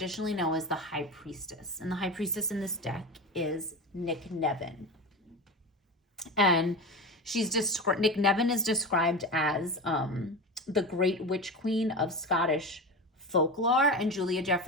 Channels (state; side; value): normal; both; correlation 0.24